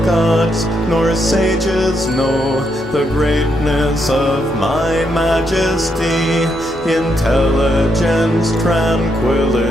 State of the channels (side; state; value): both; normal; correlation 0.79